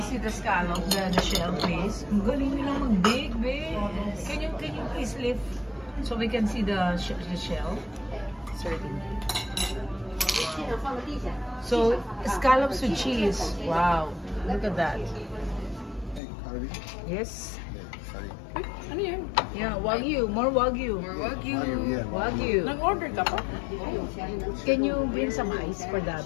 see the scallop, the shell, please? Ang galing nilang mag-bake, babe. Can you please lift so we can see the shell? Certainly. So, scallops with cheese. Wow. Look at that. Yes. Ano yan? Yeah, Wagyu. More Wagyu. More Wagyu. Wagyu. Nag-order ka pa? Can you bring some ice for the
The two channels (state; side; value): drops out; right; at 16.2 s